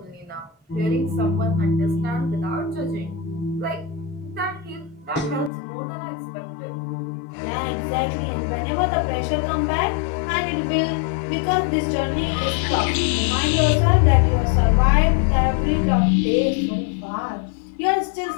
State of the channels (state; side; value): drops out; right; at 5.5 s